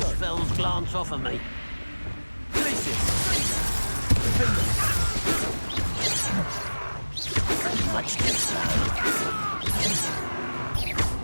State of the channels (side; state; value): both; inverted; correlation -1.00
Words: spells glance off of me. Much too slow.